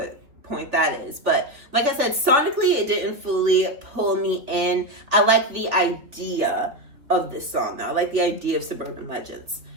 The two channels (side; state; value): left; late; 3.4 ms